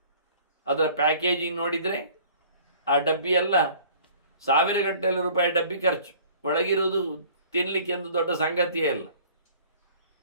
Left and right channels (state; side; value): inverted; both; correlation -0.51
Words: ಅದರ ಪ್ಯಾಕೇಜಿಂಗ್ ನೋಡಿದರೆ ಆ ಡಬ್ಬಿಯೆಲ್ಲ ಸಾವಿರಗಟ್ಟಲೆ ರೂಪಾಯಿ ಡಬ್ಬಿ ಖರ್ಚು. ಒಳಗಿರುವುದು ತಿನ್ನಲಿಕ್ಕೆ ಒಂದು ದೊಡ್ಡ ಸಂಗತಿಯೇ ಅಲ್ಲ.